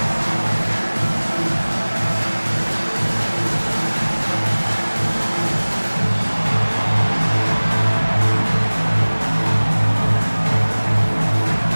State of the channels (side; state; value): both; inverted; correlation -1.00